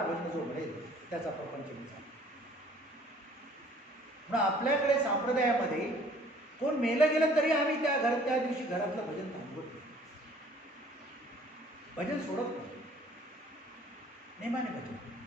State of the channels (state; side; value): normal; both; correlation 0.55